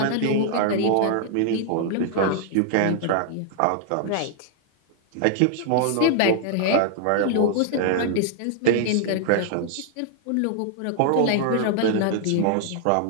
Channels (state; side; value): different; both; correlation 0.00